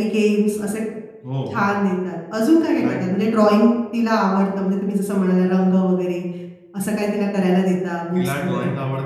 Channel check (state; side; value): identical; both; correlation 1.00